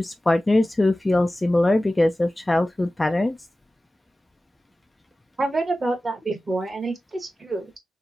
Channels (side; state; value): both; normal; correlation 0.95